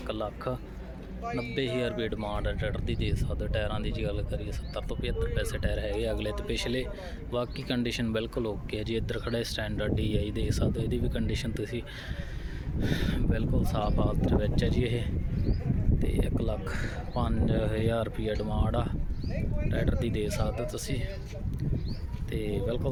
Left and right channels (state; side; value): identical; both; correlation 1.00